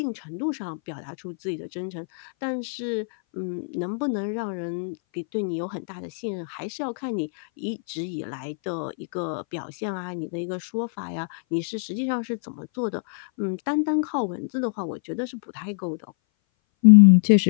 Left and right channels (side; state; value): right; silent; 59 dB below the other